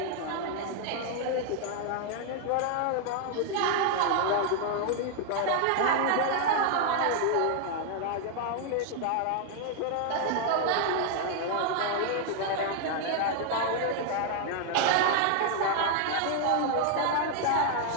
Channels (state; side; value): different; both; correlation 0.00